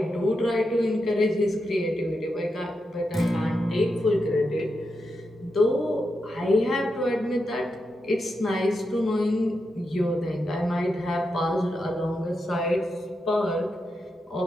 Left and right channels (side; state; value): both; normal; correlation 0.86